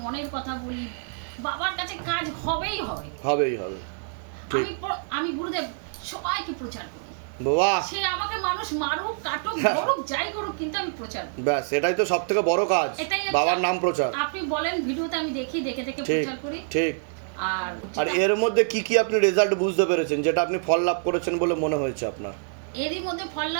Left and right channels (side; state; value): left; silent; digital silence